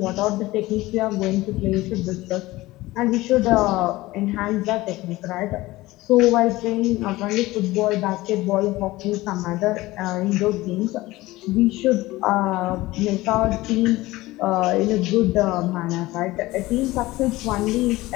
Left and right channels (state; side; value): quieter; right; 18.8 dB